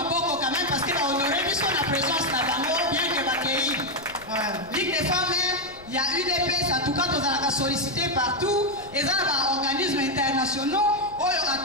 quand même parce que ba honorer biso na présence na bango bien que ba kei. Ligue des femmes, il y a UDPS, en tout cas, nous avons sollicité partout. Et ça, les organismes internationaux,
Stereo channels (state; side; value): noise; left; rumble, 22 dB below the sound